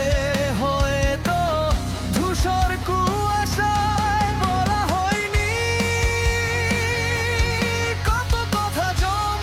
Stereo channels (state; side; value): identical; both; correlation 1.00